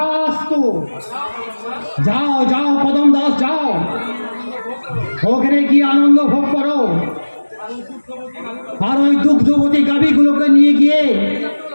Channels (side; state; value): both; inverted; correlation -1.00